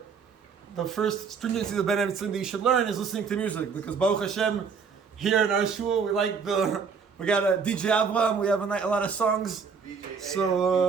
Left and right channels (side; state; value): left; quieter; 5.8 dB